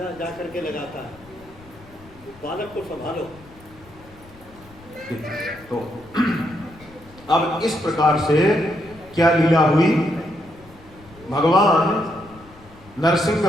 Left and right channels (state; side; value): noise; left; rumble, 23 dB below the sound